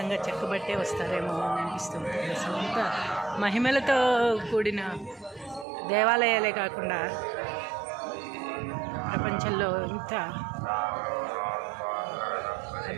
చెక్కబట్టే వస్తారేమో అని అనిపిస్తుంది. అసలు అంత మహిమలతో కూడిన దేవాలయాలే కాకుండా ప్రపంచంలో ఇంత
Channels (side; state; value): left; drops out; at 5.7 s